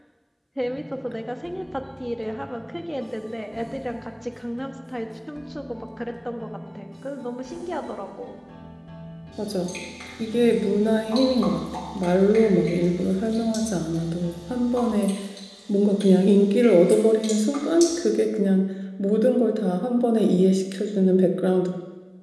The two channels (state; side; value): identical; both; correlation 1.00